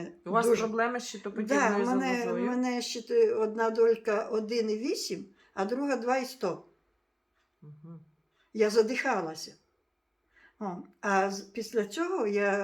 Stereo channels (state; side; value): identical; both; correlation 1.00